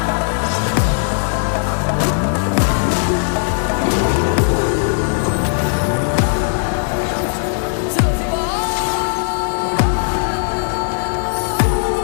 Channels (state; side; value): silent; right; digital silence